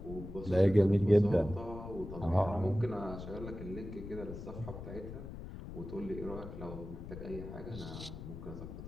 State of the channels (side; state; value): left; noise; rumble, 10 dB below the sound